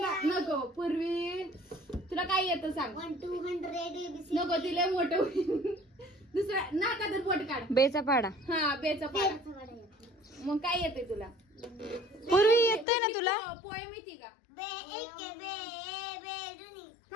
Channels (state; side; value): drops out; right; at 12.9 s